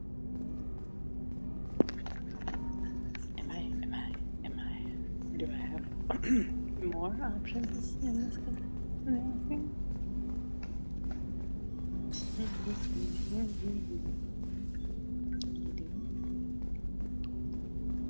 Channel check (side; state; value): both; inverted; correlation -1.00